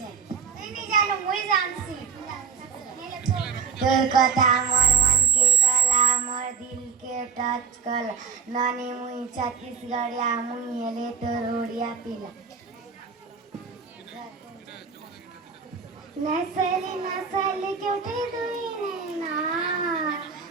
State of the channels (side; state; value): left; quieter; 6.4 dB